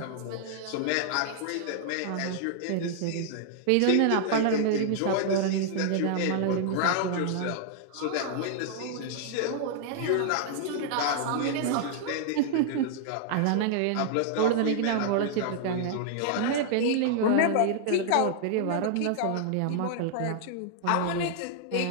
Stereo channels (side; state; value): both; different; correlation -0.01